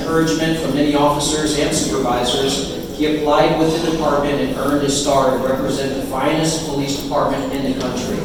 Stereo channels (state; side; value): identical; both; correlation 1.00